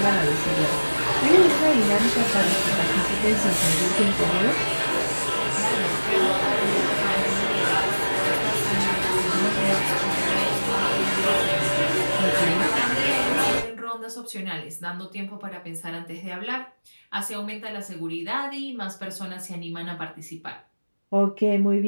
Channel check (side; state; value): both; inverted; correlation -1.00